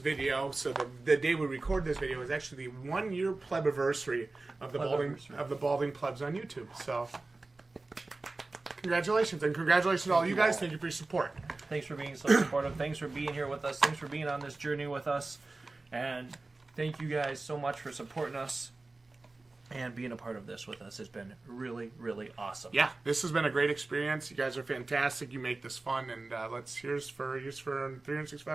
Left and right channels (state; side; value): quieter; left; 3.3 dB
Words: so the day we record this video is actually the 1-year Plebiversary of the Balding Plebs on YouTube. So, congratulations, and congratulations to all you guys. Thank you for your support. Thanks for being so supportive. Thanks for being here with us. Thanks for being on this journey with us. And thank you guys so much for supporting us and being a part of this with us. Has been really, really awesome. Yeah, this has been a great experience. You guys are fantastic. You make this fun, and here's for